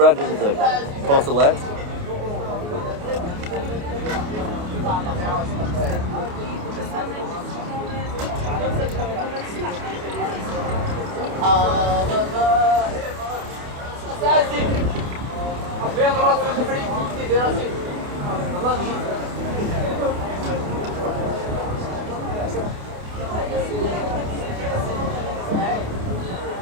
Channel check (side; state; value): left; late; 28 ms